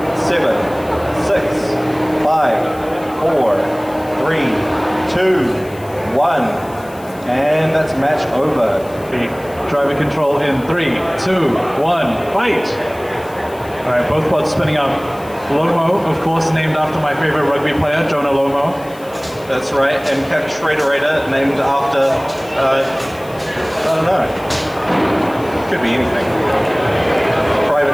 7, 6, 5, 4, 3, 2, 1. And that's match over. Driver control in 3, 2, 1, fight! Alright, both bots spinning up. Lomo, of course, named after my favorite rugby player, Jonah Lomo. That's right, and Cap Shredderator, named after, I don't know. Could be anything.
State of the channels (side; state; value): left; noise; hiss, 23 dB below the sound